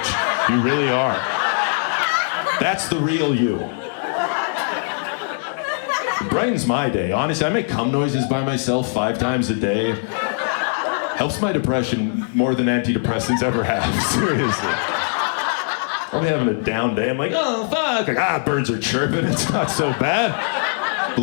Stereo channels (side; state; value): right; silent; digital silence